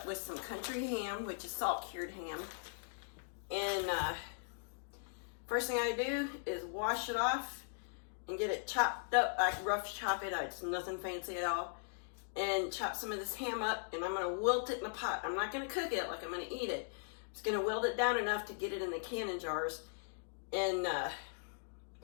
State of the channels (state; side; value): silent; right; digital silence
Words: with some country ham, which is salt cured ham. And first thing I do is wash it off and get it chopped up. I rough chop it. It's nothing fancy at all. And chop some of this ham up, and I'm going to wilt it in a pot. I'm not going to cook it like I'm going to eat it. I'm just going to wilt it down enough to get it in the canning jars. And